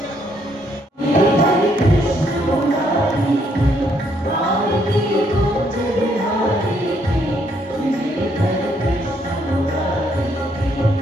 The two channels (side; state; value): both; normal; correlation 0.71